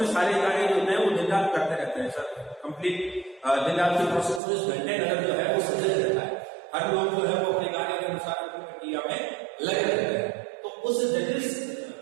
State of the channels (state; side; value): drops out; left; at 4.4 s